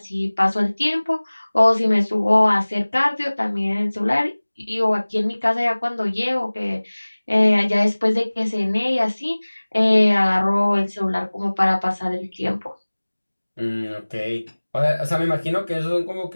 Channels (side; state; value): both; inverted; correlation -1.00